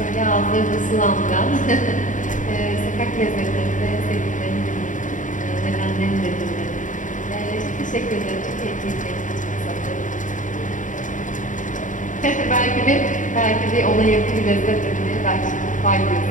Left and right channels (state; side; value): late; right; 0.37 ms